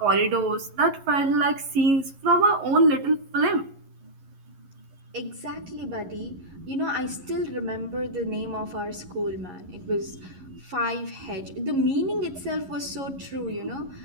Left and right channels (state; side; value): late; left; 11 ms